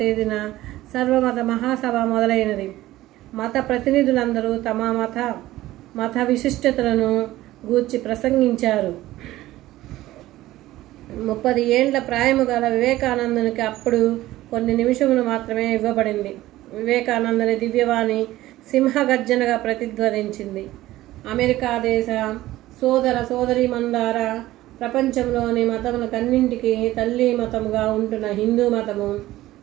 తేదీన సర్వమత మహాసభ మొదలైనది. మత ప్రతినిధులందరూ తమ మత విశిష్టతలను గూర్చి ప్రసంగించారు. 30 ఏండ్ల ప్రాయము గల వివేకానందునికి అప్పుడు కొన్ని నిమిషములు మాత్రమే ఇవ్వబడింది. వివేకానందుని దివ్యవాణి సింహగర్జనగా ప్రతిధ్వనించింది. అమెరికా దేశ సోదర సోదరీమణులారా, ప్రపంచంలోని మతములకన్నింటికీ తల్లి మతముగా ఉంటున్న హిందూ మతము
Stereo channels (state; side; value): quieter; left; 16.0 dB